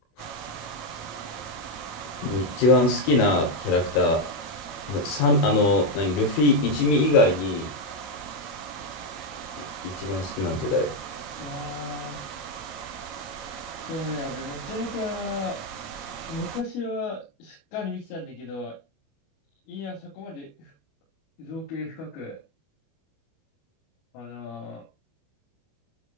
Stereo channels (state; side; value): late; right; 26 ms